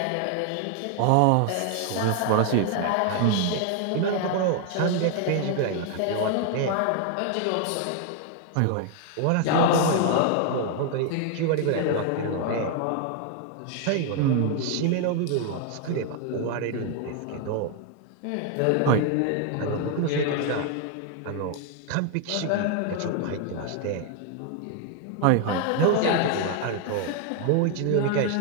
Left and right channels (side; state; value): both; different; correlation 0.01